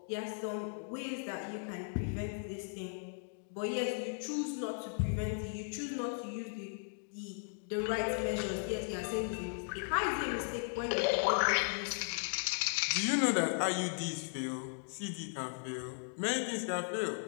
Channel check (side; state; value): right; silent; digital silence